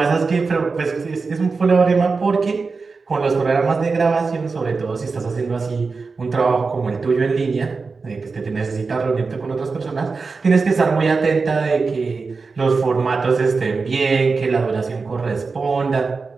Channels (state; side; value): quieter; left; 4.4 dB